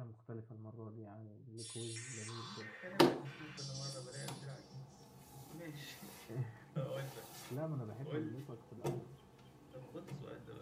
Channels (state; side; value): identical; both; correlation 1.00